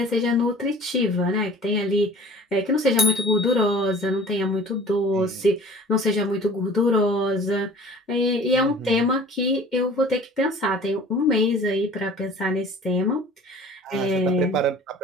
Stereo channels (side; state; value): both; normal; correlation 0.46